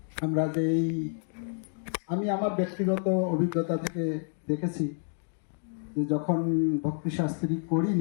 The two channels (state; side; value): silent; right; 58 dB below the other